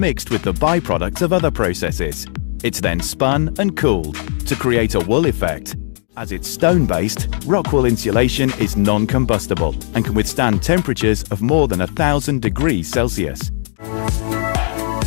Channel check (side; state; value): right; silent; digital silence